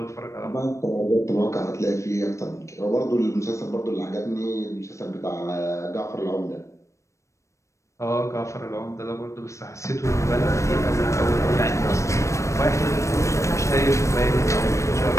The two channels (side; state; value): right; late; 0.15 ms